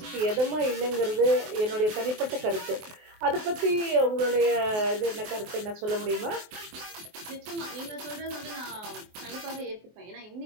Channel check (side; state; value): left; late; 24 ms